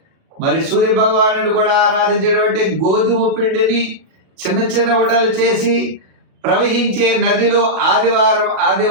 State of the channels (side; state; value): left; late; 37 ms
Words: మరి సూర్య భగవాను కూడా ఆరాధించేటువంటి గోధుమ పిండిని చిన్న చిన్న ఉండలు చేసి ప్రవహించే నదిలో